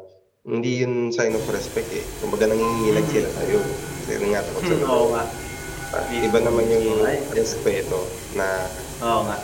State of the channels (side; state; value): both; identical; correlation 1.00